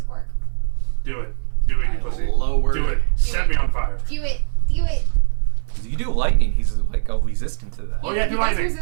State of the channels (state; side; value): silent; left; 58 dB below the other